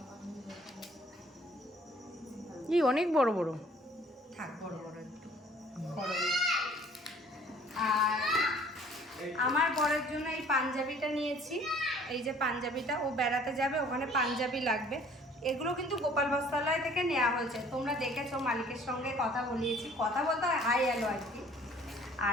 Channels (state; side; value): normal; both; correlation 0.55